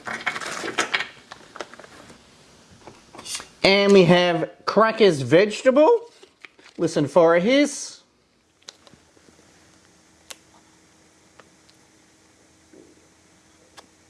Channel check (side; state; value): both; identical; correlation 1.00